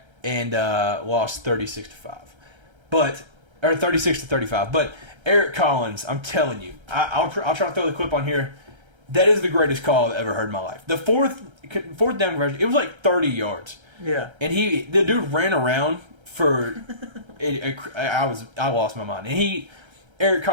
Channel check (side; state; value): left; late; 1.3 ms